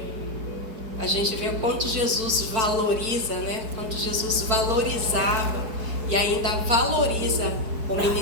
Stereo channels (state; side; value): late; left; 4.5 ms